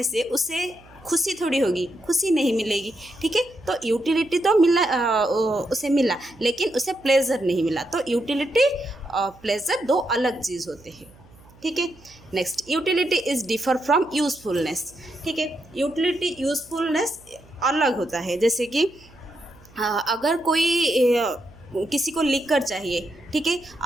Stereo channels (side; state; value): right; noise; hum, 25 dB below the sound